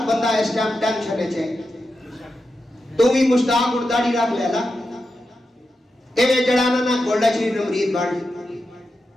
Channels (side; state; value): both; normal; correlation 0.89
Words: بندہ اس ٹائم ٹینشن ہے، تو بھی مشتاق اور داڑھی رکھ لے لا، ایویں جڑانا نہ گولڈا شریف نے مرید بڑھ،